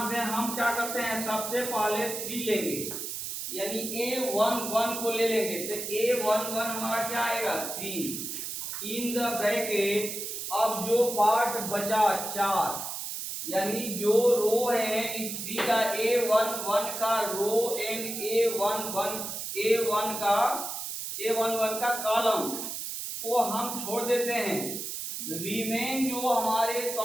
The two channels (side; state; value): right; noise; hiss, 5 dB below the sound